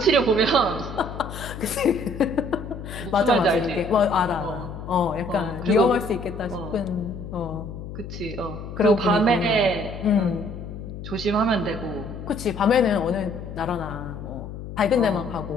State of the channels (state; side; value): noise; left; hum, 10 dB below the sound